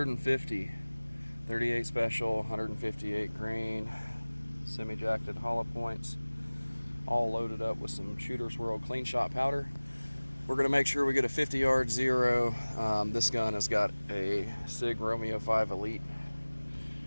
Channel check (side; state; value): both; inverted; correlation -1.00